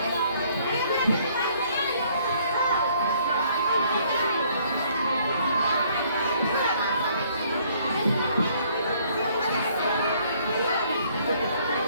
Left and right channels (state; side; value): inverted; both; correlation -0.63